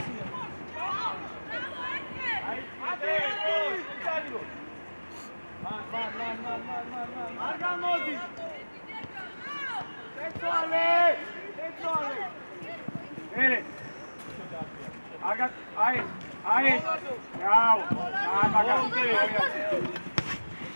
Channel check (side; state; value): both; inverted; correlation -1.00